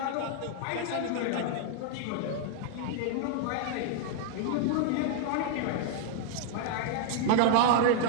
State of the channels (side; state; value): both; different; correlation 0.00